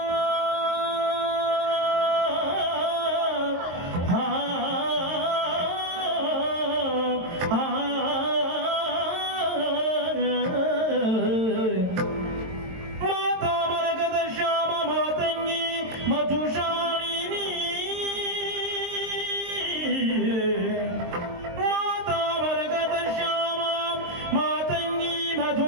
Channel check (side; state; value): left; late; 22 ms